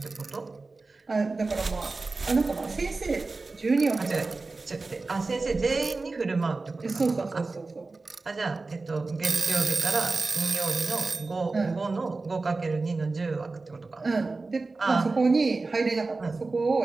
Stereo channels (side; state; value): left; quieter; 3.7 dB